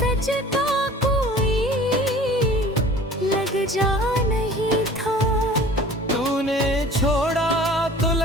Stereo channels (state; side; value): normal; both; correlation 0.46